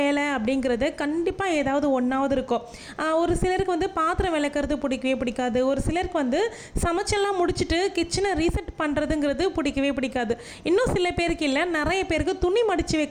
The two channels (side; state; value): both; identical; correlation 1.00